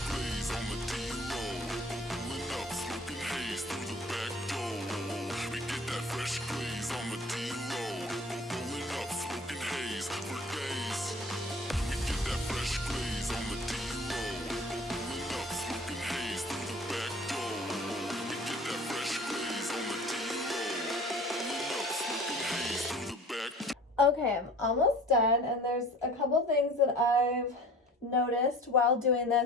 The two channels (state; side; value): normal; both; correlation 0.45